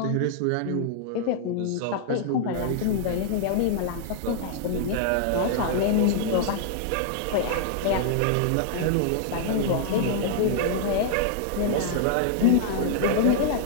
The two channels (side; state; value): both; different; correlation -0.01